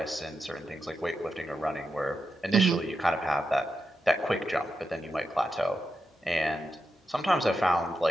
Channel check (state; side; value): normal; both; correlation 0.88